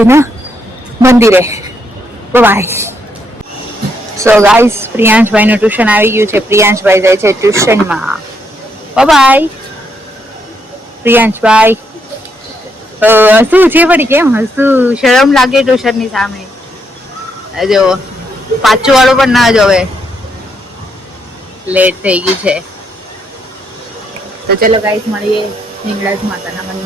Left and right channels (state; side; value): normal; both; correlation 0.76